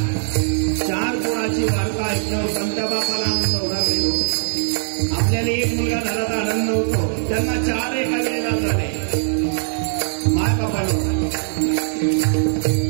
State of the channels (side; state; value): left; silent; digital silence